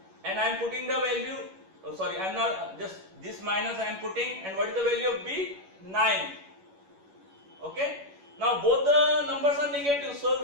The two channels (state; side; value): late; left; 11 ms